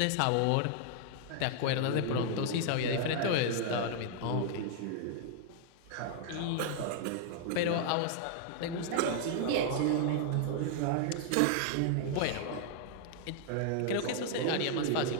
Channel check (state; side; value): different; both; correlation 0.00